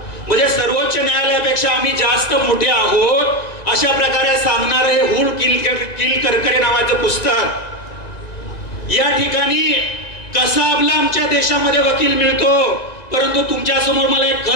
म्हणजे सर्वोच्च न्यायालयापेक्षा आम्ही जास्त मोठे आहोत अशा प्रकारे सांगणार हे हुल किल करकरे नावाचं पुस्तक। या ठिकाणी कसाबला आमच्या देशामध्ये वकील मिळतो, परंतु तुमच्या समोर मला एक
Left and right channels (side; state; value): right; late; 1.9 ms